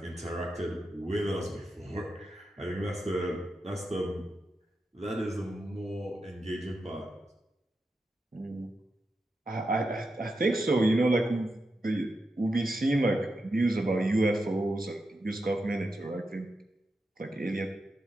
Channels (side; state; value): both; normal; correlation 0.88